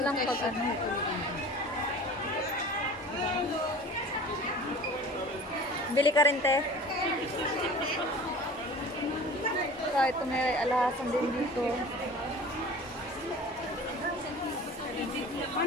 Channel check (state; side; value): normal; both; correlation 0.40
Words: lang pag ano. Bili ka rin, te. So, ito may alahasan din dito.